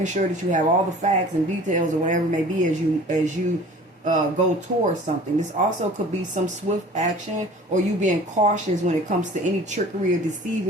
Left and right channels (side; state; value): both; normal; correlation 0.45